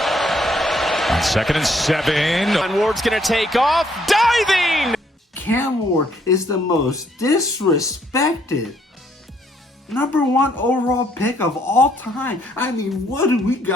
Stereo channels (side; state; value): both; normal; correlation 0.68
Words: On 2nd and 7. And Ward's going to take off. Diving! Cam Ward is the most disrespected #1 overall pick of all time. I mean, what do we